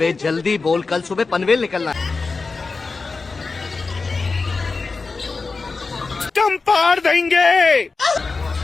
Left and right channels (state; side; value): quieter; right; 4.2 dB